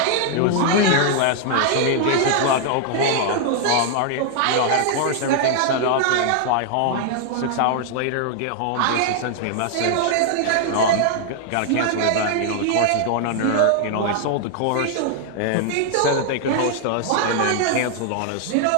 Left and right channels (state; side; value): different; both; correlation 0.00